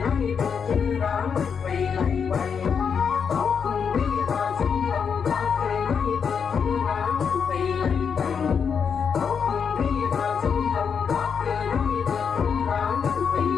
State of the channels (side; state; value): right; quieter; 6.6 dB